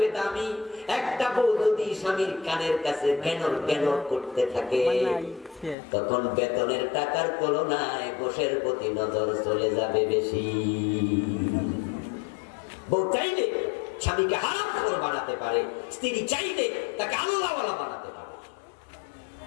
দামি। একটা বউ যদি স্বামীর কানের কাছে কেনর কেনর করতে থাকে, তখন বেতনের টাকার তুলনায় গোশের প্রতি নজর চলে যাবে বেশি। বউ চাইলে স্বামীকে হারামখোর বানাতে পারে, স্ত্রী চাইলে তাকে আল্লাহওয়ালা বানাতে পারে।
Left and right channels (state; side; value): drops out; right; at 5.8 s